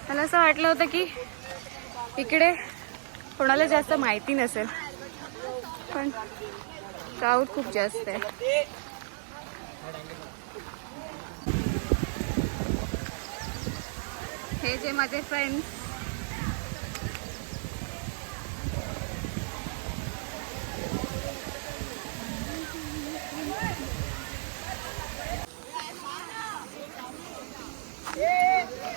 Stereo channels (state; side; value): silent; left; 57 dB below the other